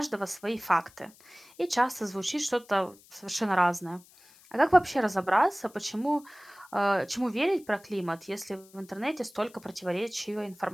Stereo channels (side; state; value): left; noise; hiss, 26 dB below the sound